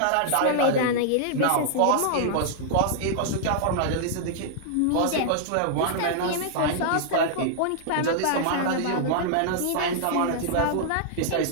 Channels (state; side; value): different; both; correlation -0.01